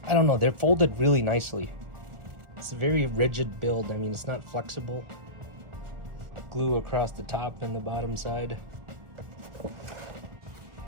I don't know, they're folded really nicely. It's a very rigid build. I mean, it's not flexible. Glue across the top and the bottom side.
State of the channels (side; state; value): left; late; 1.4 ms